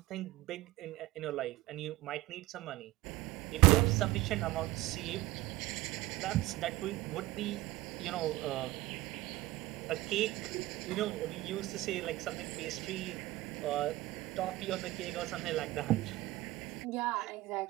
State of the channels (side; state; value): left; quieter; 18.3 dB